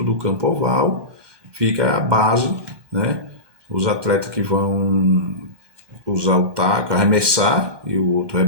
do campo oval fica a base, né? Os atletas que vão usar o taco, arremessar e o outro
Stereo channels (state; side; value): late; left; 1.2 ms